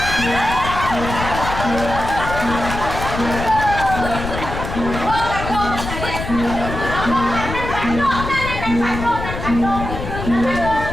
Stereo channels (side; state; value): left; noise; rumble, 6 dB below the sound